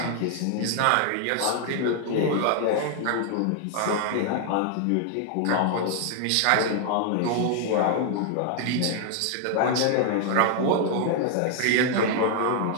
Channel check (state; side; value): different; both; correlation 0.00